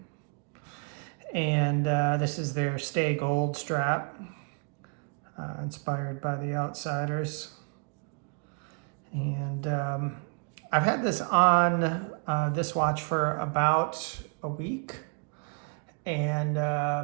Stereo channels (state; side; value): quieter; left; 39.4 dB